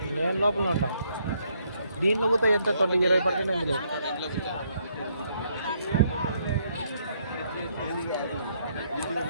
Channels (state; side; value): inverted; both; correlation -0.71